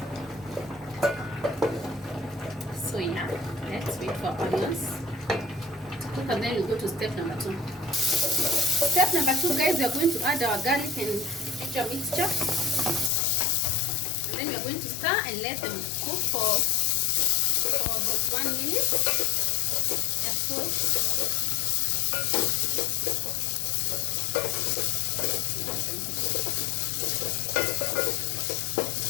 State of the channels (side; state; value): right; drops out; at 13.1 s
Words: So yeah, let's wait for our onions to cook, and then we go to step number 2. Step number 2, guys, we are going to add our garlic and ginger mixture. And then we are going to stir and let them cook for about 1 minute. Yes, so.